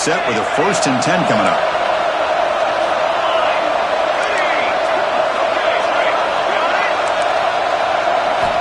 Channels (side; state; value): both; identical; correlation 1.00